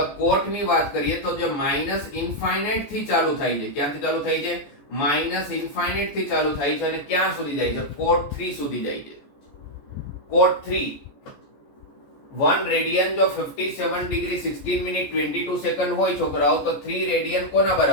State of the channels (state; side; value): late; right; 14 ms